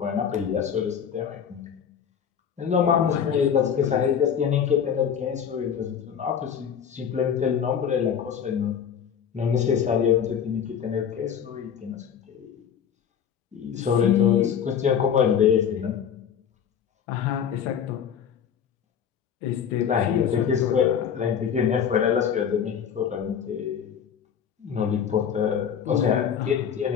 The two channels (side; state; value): right; quieter; 8.0 dB